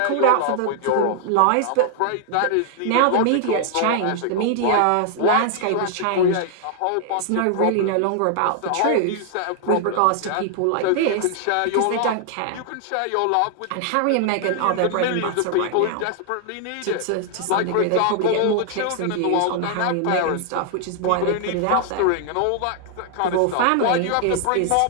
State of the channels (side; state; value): both; different; correlation -0.01